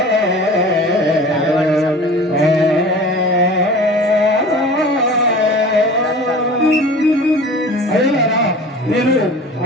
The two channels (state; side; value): normal; both; correlation 0.40